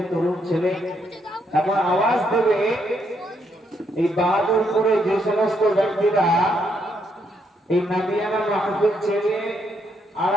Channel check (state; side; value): normal; both; correlation 0.76